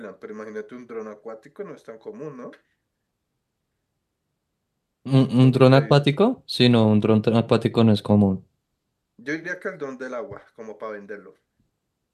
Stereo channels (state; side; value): identical; both; correlation 1.00